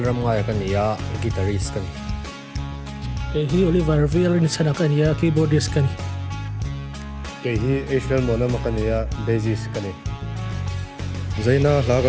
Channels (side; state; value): both; identical; correlation 1.00